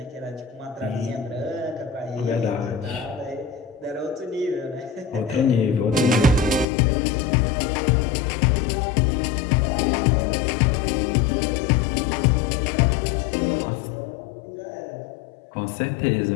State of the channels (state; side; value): drops out; right; at 6.7 s